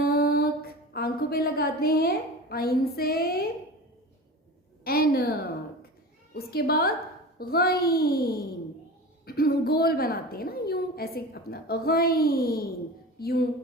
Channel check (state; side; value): normal; both; correlation 0.33